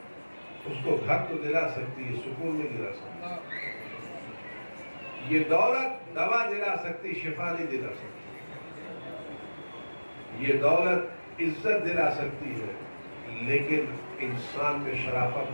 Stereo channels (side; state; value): both; inverted; correlation -1.00